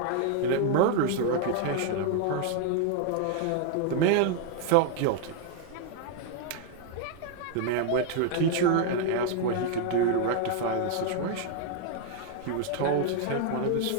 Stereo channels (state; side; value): different; both; correlation 0.00